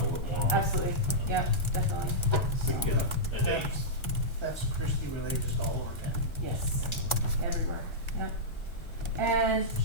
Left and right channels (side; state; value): right; late; 1.3 ms